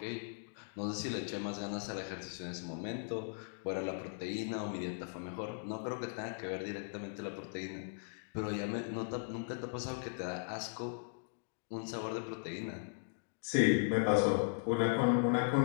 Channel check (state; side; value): silent; right; digital silence